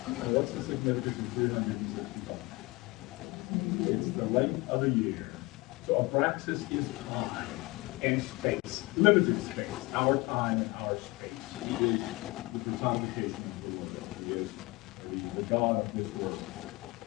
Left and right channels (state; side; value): quieter; right; 23.1 dB